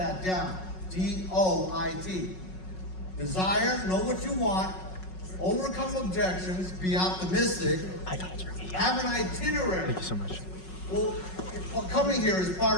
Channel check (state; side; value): late; right; 5.4 ms